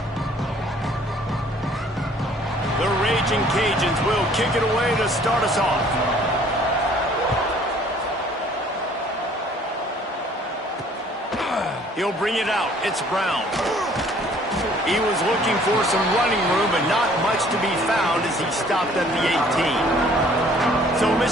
The Raging Cajuns will kick it away to start us off. He'll bring it out. It's Brown. He was looking for some running room, but not much to be found as he stopped at the 18. So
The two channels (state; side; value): normal; both; correlation 0.57